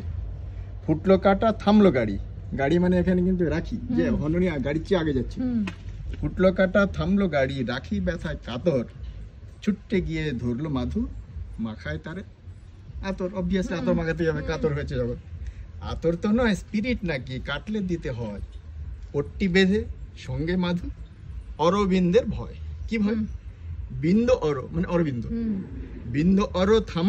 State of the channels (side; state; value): both; identical; correlation 1.00